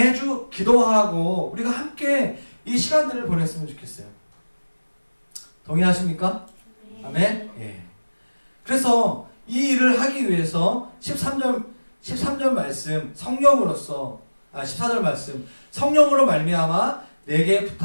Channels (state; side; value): inverted; both; correlation -1.00